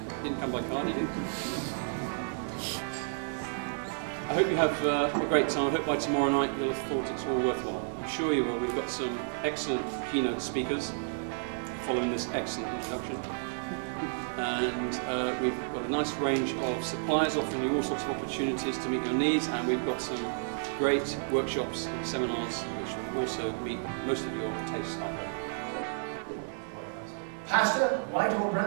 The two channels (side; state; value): left; silent; digital silence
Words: didn't come by car, did you? I hope you have a great time. I hope by tomorrow night you'll have thought it's all worthwhile. I'm sure you will. We've got some excellent keynote speakers following this excellent introduction. And we've got a nice range of suppliers offering you all sorts of opportunities to meet your needs, and we've got some great workshops and seminars which will also meet most of your tastes, I hope. Pasta, white or